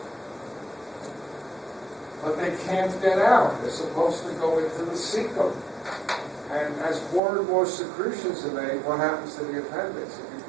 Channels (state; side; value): drops out; left; at 7.2 s